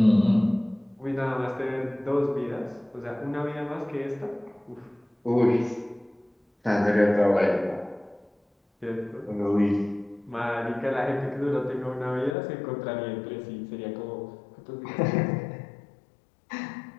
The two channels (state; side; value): drops out; right; at 12.4 s